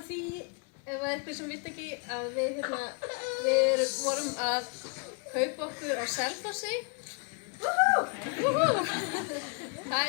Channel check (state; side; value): quieter; right; 36.1 dB